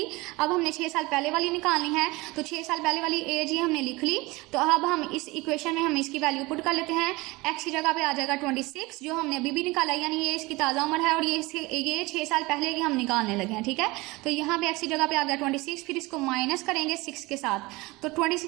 अब हमने 6 साल पहले वाली निकालनी है, तो 6 साल पहले वाली एज ही हमने लिख ली। तो अब हम इस इक्वेशन में हम इसकी वैल्यू पुट कर लेते हैं। x की जगह पे आ जाएगा 26, जो हमने अभी भी निकाला, यानी ये इसकी ताज़ा उम्र है और ये 6 साल पहले की हम निकालने लगे हैं, ठीक है। तो यहाँ पे x की जगह पे आ गया 26, फिर इसको माइनस करेंगे 6 के साथ। तो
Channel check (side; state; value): left; quieter; 22.5 dB